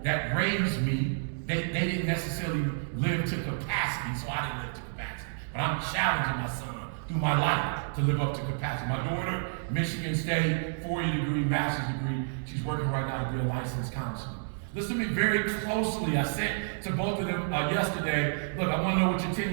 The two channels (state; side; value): silent; left; digital silence